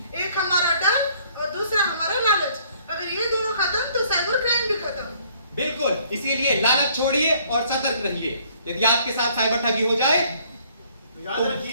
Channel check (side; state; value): both; inverted; correlation -0.62